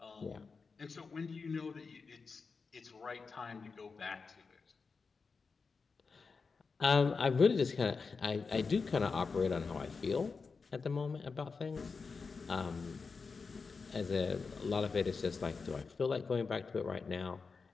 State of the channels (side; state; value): right; quieter; 4.8 dB